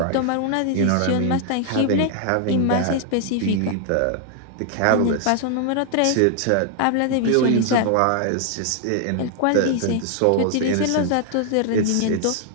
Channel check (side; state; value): both; different; correlation 0.00